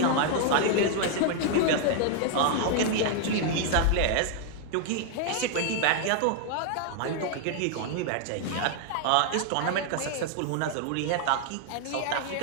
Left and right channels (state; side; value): different; both; correlation 0.00